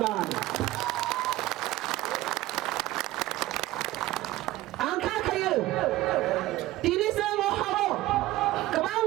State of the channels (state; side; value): quieter; left; 16.7 dB